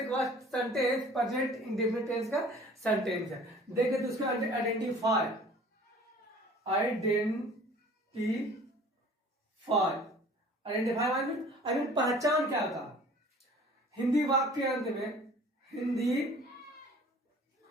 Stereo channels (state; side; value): normal; both; correlation 0.48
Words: सेंटेंस प्रेजेंट इंडेफिनिट टेंस का सेंटेंस है। देखिए तो उसको आइडेंटिफाई पहचान क्या था? हिंदी वाक्य के अंत में, हिंदी